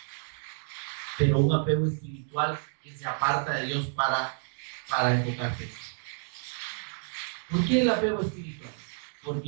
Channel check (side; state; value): left; silent; 58 dB below the other